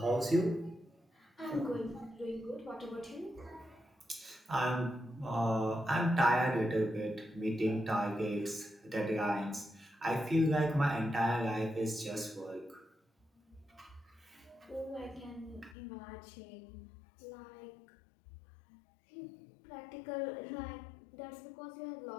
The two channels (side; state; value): right; drops out; at 15.8 s